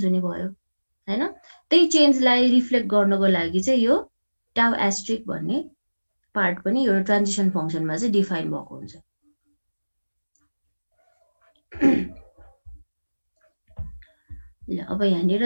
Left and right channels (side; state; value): both; inverted; correlation -1.00